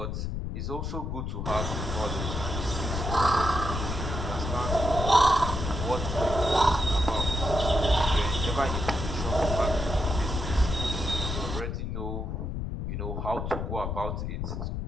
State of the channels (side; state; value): left; noise; rumble, 3 dB below the sound